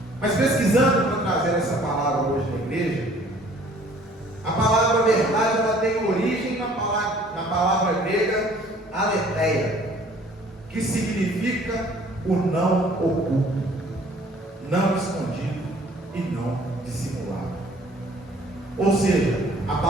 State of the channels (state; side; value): normal; both; correlation 0.55